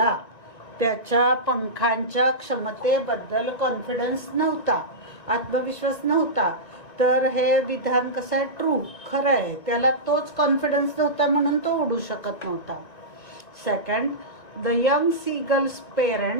त्याच्या पंखांच्या क्षमतेबद्दल कॉन्फिडन्स नव्हता, आत्मविश्वास नव्हता. तर हे विधान कसं आहे? ट्रू, खरं आहे. त्याला तोच कॉन्फिडन्स नव्हता म्हणून तो उडू शकत नव्हता. Second, the young seagull's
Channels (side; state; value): right; late; 1.9 ms